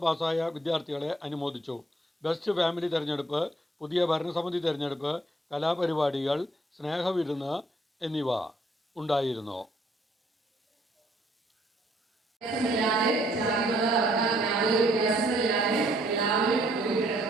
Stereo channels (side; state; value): both; normal; correlation 0.67